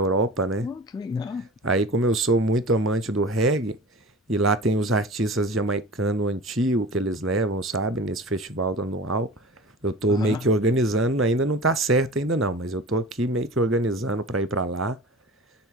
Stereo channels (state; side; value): normal; both; correlation 0.37